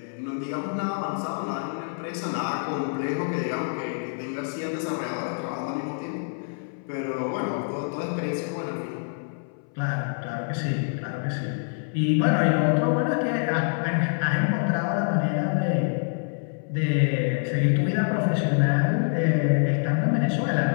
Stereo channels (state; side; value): silent; right; 61 dB below the other